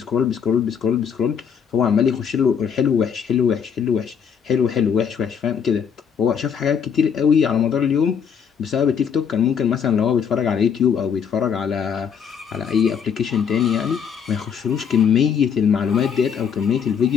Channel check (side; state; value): right; quieter; 7.3 dB